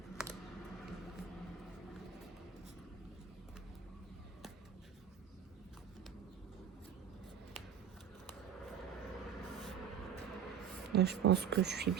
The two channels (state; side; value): quieter; left; 8.3 dB